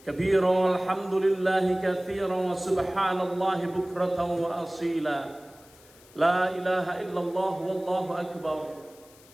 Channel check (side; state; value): left; noise; hiss, 25 dB below the sound